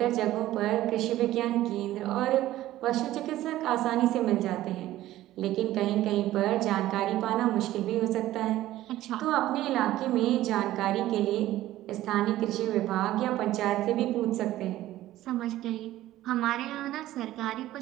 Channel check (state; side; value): quieter; left; 14.8 dB